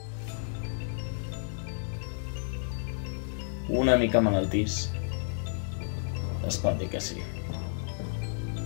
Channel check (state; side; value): silent; right; digital silence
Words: Una mica malaltís, es pot dir que sí.